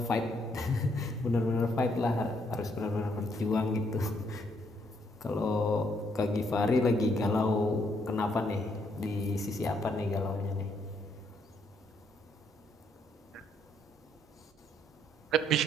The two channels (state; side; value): normal; both; correlation 0.72